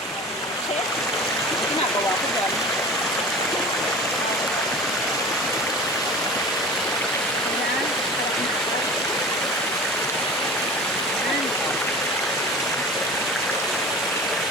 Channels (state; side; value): normal; both; correlation 0.38